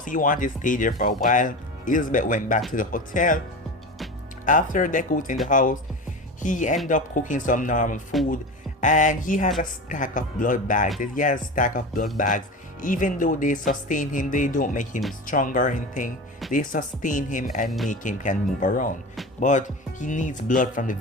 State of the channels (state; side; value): normal; both; correlation 0.28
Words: He wanted to stay there for a while. Elizabeth went back to the hotel. After Deku was in the house, he ended up cooking some normal food, and he has a stack of blood bags. He has a stack of blood bags. Even though they sustain him, they don't make him stronger or anything. They sustain him and make him can move around. But he needs blood from the